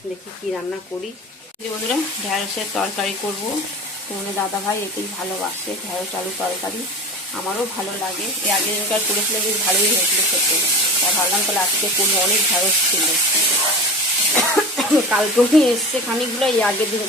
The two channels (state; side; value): normal; both; correlation 0.32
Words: দেখি কি রান্না করি। বন্ধুরা, ঢ্যাঁড়সের তরকারি করব। তোমাদের দাদাভাই এতেই ভালোবাসে, ঢ্যাঁড়স আলু তরকারি। আমারও ভালো লাগে, এর আগে যেটা করেছিলাম বেশ ভালোই হয়েছিল খেতে। তা ভাবলাম তাহলে আজকে করি, অনেক ঢ্যাঁড়স ছিল। কালকেও নিয়ে এসছে খানিকগুলো, এই আগের